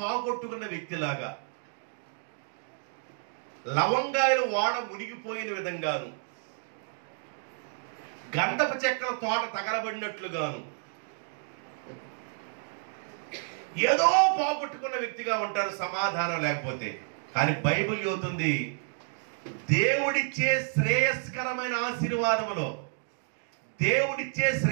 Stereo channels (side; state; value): left; silent; 58 dB below the other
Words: వ్యక్తిలాగా, లవంగాయలు వాడ మునిగిపోయిన విధంగాను, గంధపు చెక్కల తోట తగలబడినట్లుగాను, ఏదో పోగొట్టుకున్న వ్యక్తిగా ఉంటారు సమాధానం లేకపోతే. కానీ బైబిల్ చెబుతుంది, దేవుడిచ్చే శ్రేయస్కరమైన ఆశీర్వాదములో, దేవుడిచ్చే